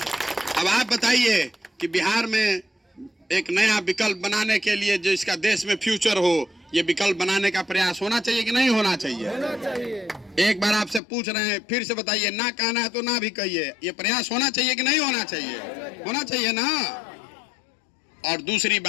अब आप बताइए कि बिहार में एक नया विकल्प बनाने के लिए जो इसका देश में फ्यूचर हो, ये विकल्प बनाने का प्रयास होना चाहिए कि नहीं होना चाहिए? एक बार आपसे पूछ रहे हैं, फिर से बताइए। ना कहना है तो ना भी कहिए। ये प्रयास होना चाहिए कि नहीं होना चाहिए? होना चाहिए ना। और दूसरी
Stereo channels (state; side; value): drops out; right; at 11.0 s